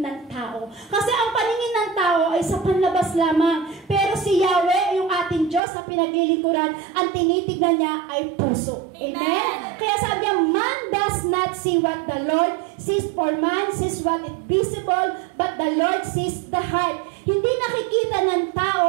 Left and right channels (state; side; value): drops out; left; at 5.6 s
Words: ng tao. Kasi ang paningin ng tao ay sa panlabas lamang. Pero si Yahweh, yung ating Diyos na pinaglilingkuran, ang tinitignan niya ay puso. Amen? Kaya sabi niya, man does not see what the Lord sees, for man sees what is visible, but the Lord sees the heart. Hindi nakikita ng